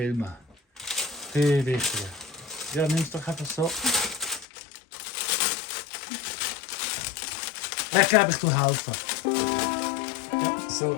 Viel wichtiger. Ja, nimm es doch einfach so. Ich glaube, ich tue helfen. Ja,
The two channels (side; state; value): right; drops out; at 4.5 s